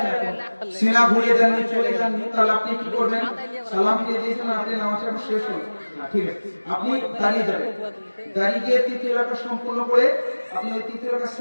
এখন সিনা ঘুরিয়ে দেননি, চলে যাননি, তাহলে আপনি কি করবেন? সালাম ফিরিয়ে দিয়েছেন, আপনি নামাজ এখন শেষ হল, ঠিক আছে, আপনি দাঁড়িয়ে যাবেন, দাঁড়িয়ে গিয়ে তৃতীয় রাকাত সম্পূর্ণ করে আপনি ওই তৃতীয় রাকাত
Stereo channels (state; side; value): inverted; both; correlation -1.00